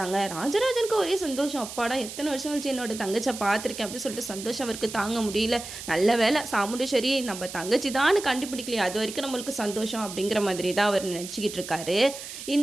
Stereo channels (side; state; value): right; noise; hiss, 11 dB below the sound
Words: ராஜராஜனுக்கு ஒரே சந்தோஷம். அப்பாடா எத்தனை வருஷம் கழிச்சு என்னோட தங்கச்சை பார்த்துருக்கேன் அப்படின்னு சொல்லிட்டு சந்தோஷம் அவருக்கு தாங்க முடியல. நல்ல வேலை சாமுண்டேஸ்வரி நம்ம தங்கச்சி தான் கண்டுபிடிக்கலையே, அது வரைக்கும் நம்மளுக்கு சந்தோஷம் அப்படிங்கிற மாதிரி தான் அவர் நினச்சிக்கிட்டு இருக்காரு.